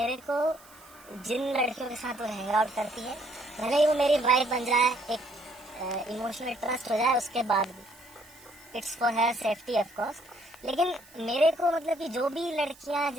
को जिन लड़कियों के साथ वो हैंग आउट करती है, भले ही वो मेरी वाइफ बन जाए, एक इमोशनल ट्रस्ट हो जाए, उसके बाद भी it's for her safety of course. लेकिन मेरे को मतलब कि जो भी लड़कियां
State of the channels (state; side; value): noise; right; hiss, 24 dB below the sound